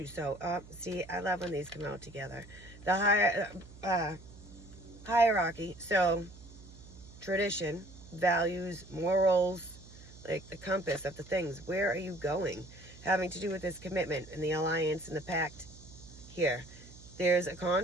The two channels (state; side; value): noise; right; hum, 19 dB below the sound